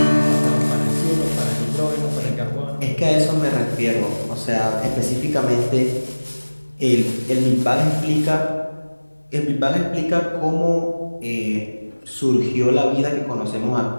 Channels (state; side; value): inverted; both; correlation -1.00